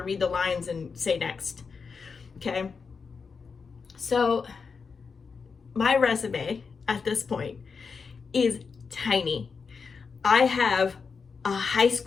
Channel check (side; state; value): right; quieter; 5.3 dB